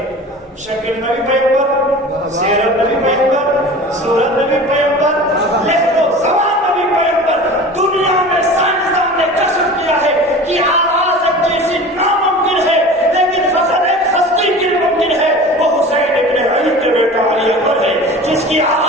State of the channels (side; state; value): both; normal; correlation 0.37